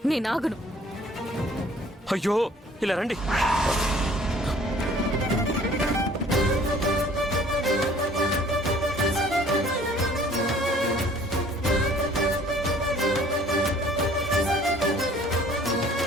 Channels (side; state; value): both; normal; correlation 0.54